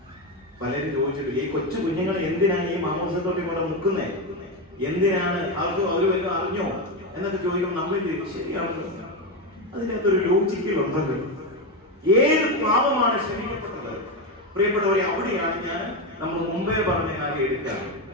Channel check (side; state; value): both; normal; correlation 0.11